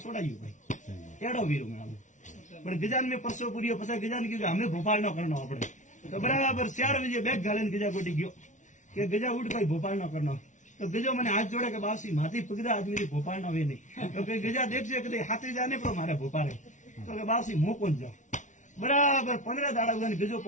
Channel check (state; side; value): late; right; 0.36 ms